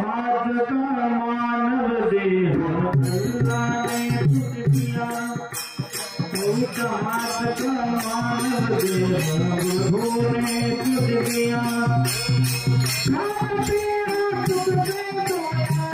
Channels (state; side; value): identical; both; correlation 1.00